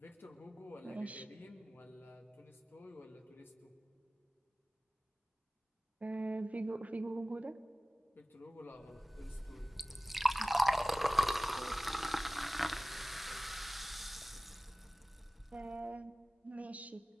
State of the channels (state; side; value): normal; both; correlation 0.97